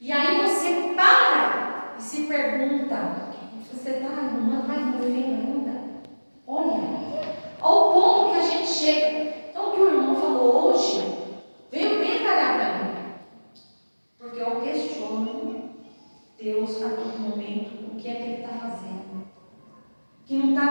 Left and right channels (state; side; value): inverted; both; correlation -1.00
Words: E aí você para e se pergunta: você está arrumando mais meu filho ainda? Olha, ao ponto que a gente chega. Então, o que o irmão falou hoje veio bem calhar para mim, porque eu questiono Deus a todo momento o que é que Ele está fazendo, que não